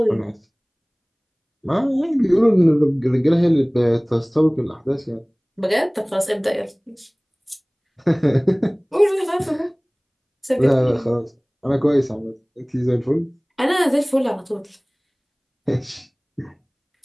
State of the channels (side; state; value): both; identical; correlation 1.00